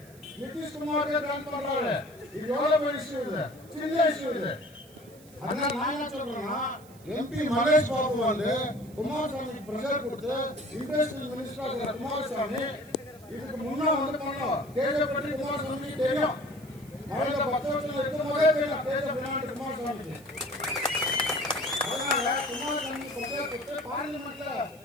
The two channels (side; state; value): right; noise; hiss, 24 dB below the sound